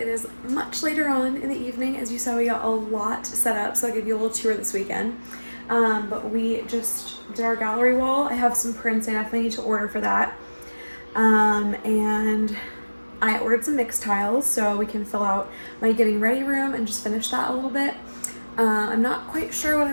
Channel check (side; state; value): both; inverted; correlation -1.00